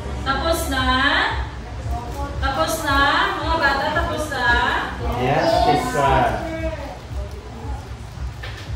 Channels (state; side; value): identical; both; correlation 1.00